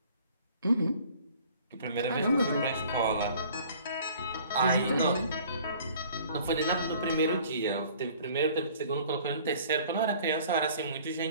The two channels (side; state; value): both; inverted; correlation -0.52